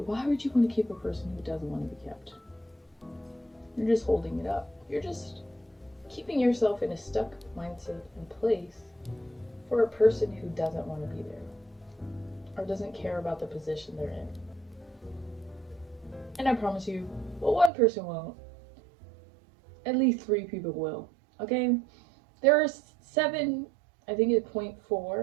why would you want to keep a person who doesn't want to be kept? You're just holding it up. You're just keeping yourself in a stuck mindset and place for a person who doesn't want to be there, or doesn't care about the position they're in. And I promise you, well, one person won't. At least 3 people will. Okay? There are 7, I think it's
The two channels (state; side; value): drops out; left; at 17.7 s